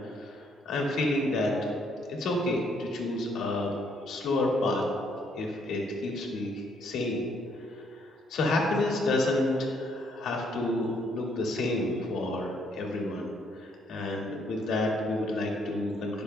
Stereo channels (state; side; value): normal; both; correlation 0.69